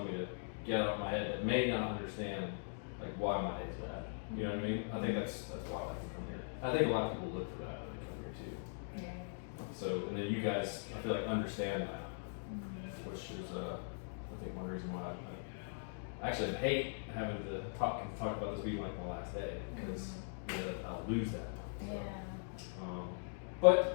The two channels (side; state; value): right; silent; digital silence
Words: me to get out of my head that may not understand like why my day's bad. You know what I mean? I think that's why I like to come here. I think a lot of people look for that when they come here too. Yeah. So, and then you guys, I feel like, understand that, which is, I think, one reason why I actually hate having to talk about this being like my last day, because I'll lose that. So,